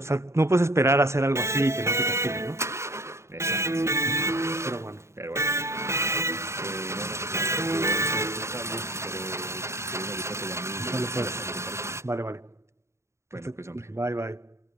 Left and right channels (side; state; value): left; late; 0.13 ms